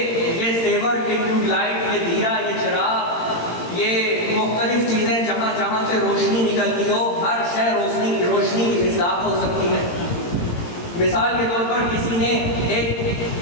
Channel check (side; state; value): right; late; 18 ms